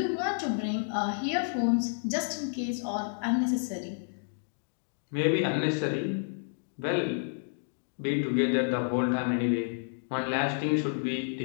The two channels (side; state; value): right; silent; digital silence